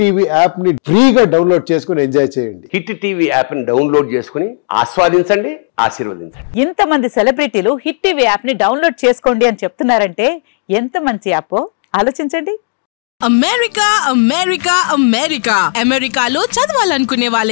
యాప్ ని ఫ్రీగా డౌన్లోడ్ చేసుకుని ఎంజాయ్ చేయండి. హిట్ టీవీ యాప్ ని డౌన్లోడ్ చేసుకుని ఆస్వాదించండి, ఆశీర్వదించండి. ఇంతమంది సెలబ్రిటీలు హిట్ టీవీ యాప్ ని డౌన్లోడ్ చేసుకోండి అని చెప్తున్నారంటే ఎంత మంచి యాప్ ఆలోచించండి. అమెరికా అమెరికా అమెరికా అమెరికాలో చదవాలనుకునే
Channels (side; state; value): right; silent; digital silence